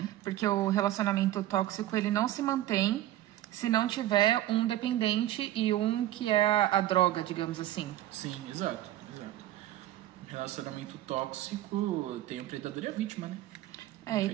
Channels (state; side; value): quieter; left; 14.1 dB